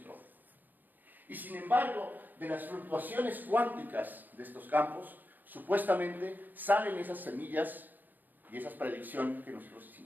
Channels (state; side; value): late; left; 0.087 ms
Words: Y sin embargo, de las fluctuaciones cuánticas de estos campos, supuestamente salen esas semillas y esas predicciones que nosotros